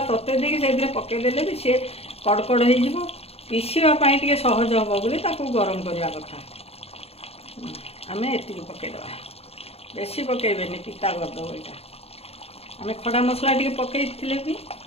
ତତେଇ ଦେଇକି ସେଇଥିରେ ପକାଇଦେଲେ ବି ସିଏ କଡ଼କଡ଼ ହେଇଯିବ। ପିସିବା ପାଇଁ ଟିକେ ସହଜ ହେବ ବୋଲି ତାକୁ ଗରମ କରିବା କଥା। ଆମେ ଏତିକି ପକାଇଦେବା, ବେଶୀ ପକାଇବେନି, ପିତା କରିଦେବ ଏଇଟା। ଆମେ ଖଡ଼ା ମସଲା ଟିକେ ପକାଇଥିଲେ ବି।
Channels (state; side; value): late; right; 0.29 ms